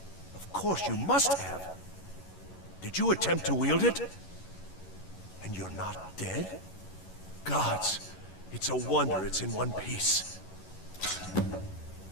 Of course you must have. Did you attempt to wield it? And you're not dead? Gods, it's a wonder it's in one piece.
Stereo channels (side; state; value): right; late; 11 ms